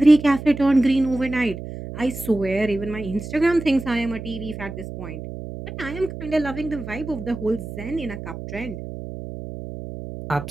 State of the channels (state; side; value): noise; right; hum, 10 dB below the sound